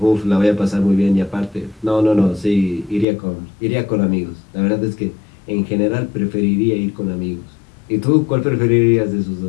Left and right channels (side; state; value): right; drops out; at 3.1 s